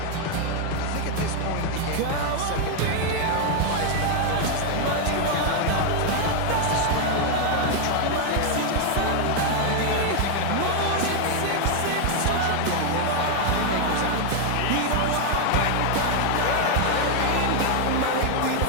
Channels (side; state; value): both; different; correlation 0.01